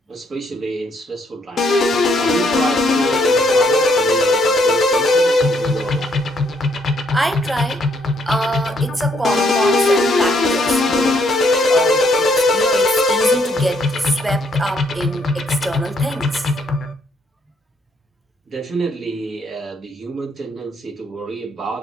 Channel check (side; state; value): both; normal; correlation 0.70